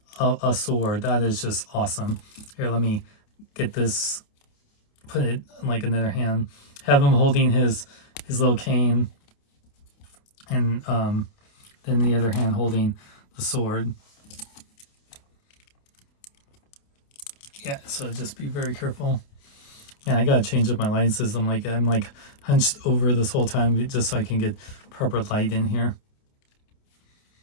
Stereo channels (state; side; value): late; right; 28 ms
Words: a sword. That is just awesome. Here, let me get this, put it in like another hand. Have him holding his little cane. And then the other hand holding the sword. Yeah, so just be very careful. Yeah, I gotta change up my lighting system. Like I'm like hunched over this whole time just so I can get proper light in here.